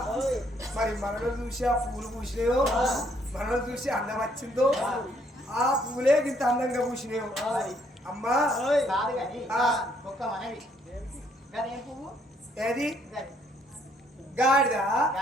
మరి మనలో చూసి ఆ పూలు పూసినాయో, మనలో చూసి అందం వచ్చిందో, ఆ పూలే ఇంత అందంగా పూసినాయో అమ్మా. కాదు కానీ ఒక్క మనవి, గదేం పువ్వు? ఏది? గాడిద?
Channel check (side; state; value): both; normal; correlation 0.67